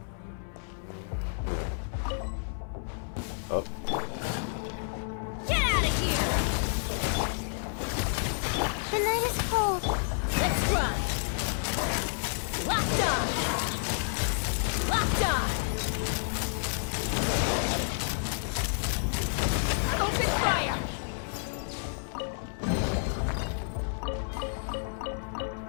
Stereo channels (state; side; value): silent; right; 58 dB below the other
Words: Oh. Get out of here! The night is cold. Let's run! Locked on! Locked on! Open fire!